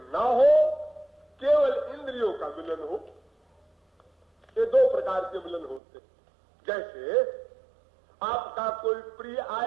ना हो, केवल इंद्रियों का मिलन हो। ये दो प्रकार के मिलन होते हैं। जैसे आपका कोई प्रिय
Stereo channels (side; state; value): left; drops out; at 5.8 s